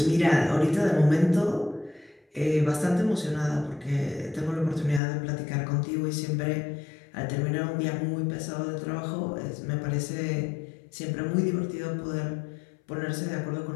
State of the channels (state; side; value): drops out; right; at 5.0 s